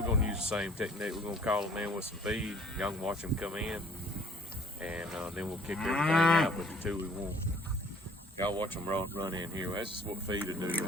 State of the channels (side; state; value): both; normal; correlation 0.55